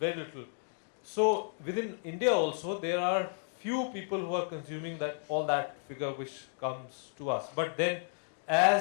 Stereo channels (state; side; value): silent; right; 56 dB below the other